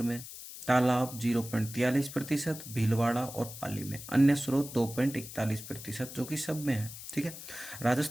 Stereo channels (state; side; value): noise; left; hiss, 12 dB below the sound